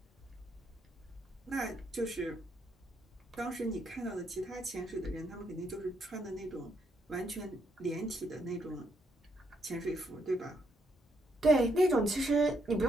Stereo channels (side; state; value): both; normal; correlation 0.75